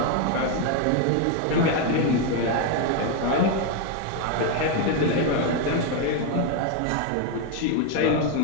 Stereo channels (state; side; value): different; both; correlation 0.01